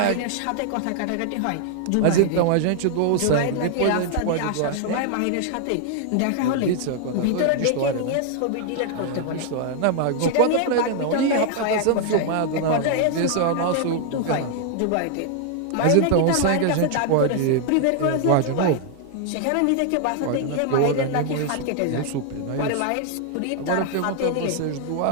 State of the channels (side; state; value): both; different; correlation 0.00